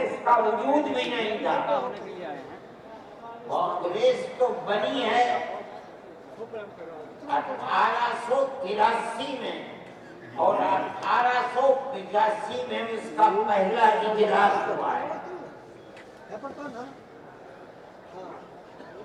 کا وجود بھی نہیں تھا. کانگریس تو بنی ہے 1883 میں اور 1885 میں اس کا پہلا اجلاس ہوا ہے,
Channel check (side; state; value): both; identical; correlation 1.00